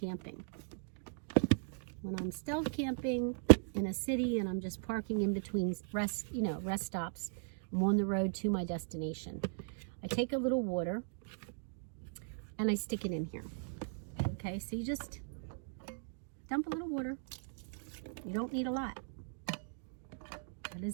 When I'm stealth camping in a city and I'm just parking in between rest stops, I'm on the road to my destination. I take a little water and I stick it in here. Okay, so you just dump a little water. You don't need a lot. That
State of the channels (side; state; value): left; silent; digital silence